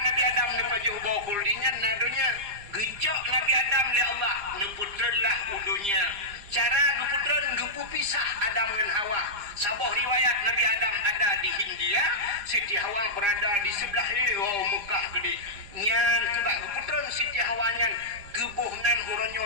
Adam nepajuh bawa kuldingan nadunya gejok Nabi Adam le Allah neputrelah udunya. Cara neputren gepu pisah Adam dan Hawa. Sabah riwayat Nabi Adam ada di Hindia, Siti Hawa berada di sebelah Mekah gede. Nyan kebak geputren Siti Hawa nyan gebuhnan uronyo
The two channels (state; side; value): late; left; 5.0 ms